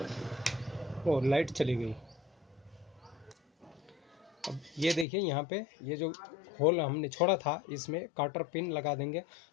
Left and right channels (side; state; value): right; drops out; at 5.1 s